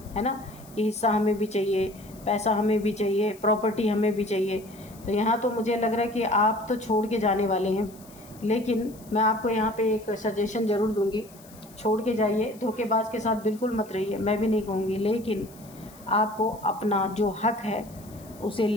है ना, कि हिस्सा हमें भी चाहिए, पैसा हमें भी चाहिए, प्रॉपर्टी हमें भी चाहिए। तो यहाँ तो मुझे लग रहा है कि आप तो छोड़ के जाने वाले हैं, लेकिन मैं आपको यहाँ पे एक सजेशन ज़रूर दूँगी, छोड़ के जाइए। धोखेबाज के साथ बिल्कुल मत रहिए, मैं भी नहीं कहूँगी, लेकिन आपको अपना जो हक है उसे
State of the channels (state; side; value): noise; left; hiss, 23 dB below the sound